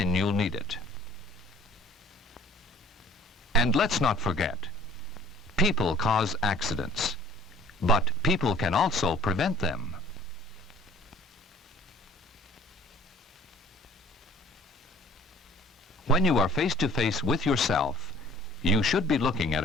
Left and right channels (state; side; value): normal; both; correlation 0.52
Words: you'll need it. And let's not forget, people cause accidents, but people can also prevent them. When you are face to face with yourself, you should be looking at